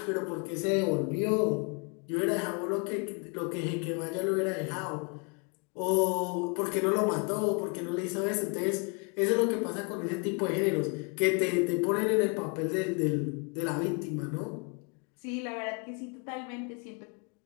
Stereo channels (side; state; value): right; quieter; 34.3 dB